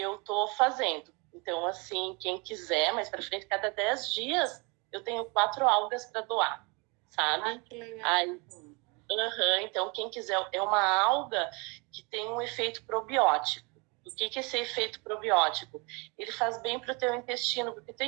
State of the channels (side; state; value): left; quieter; 29.8 dB